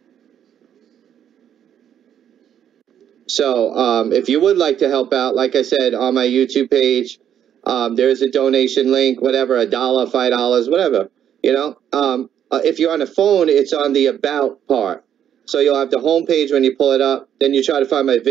So if you would like to help out, like I said, on my YouTube page, there's a donation link, whatever, $1, $5, whatever, you know. If you're on a phone, it's on the About part. So you'll have the home page when you pull it up. Then you try to find my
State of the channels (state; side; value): quieter; left; 9.6 dB